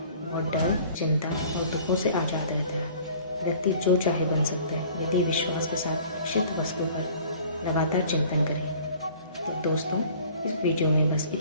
वह डर, चिंता और दुखों से आज़ाद रहता है। व्यक्ति जो चाहे बन सकता है, यदि विश्वास के साथ इच्छित वस्तु पर लगातार चिंतन करे। तो दोस्तों, इस वीडियो में बस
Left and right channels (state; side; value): inverted; both; correlation -0.50